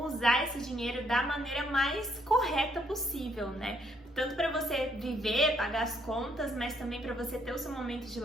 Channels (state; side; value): normal; both; correlation 0.70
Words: usar esse dinheiro da maneira mais correta possível, né? Tanto para você viver, pagar as contas, mas também para você ter o seu momento de